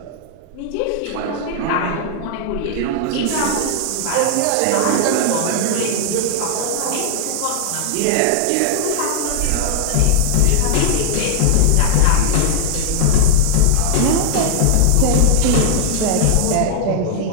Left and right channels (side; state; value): both; different; correlation 0.00